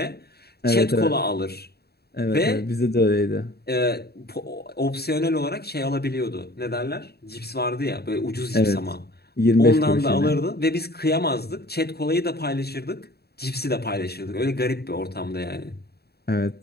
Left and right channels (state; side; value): late; right; 0.47 ms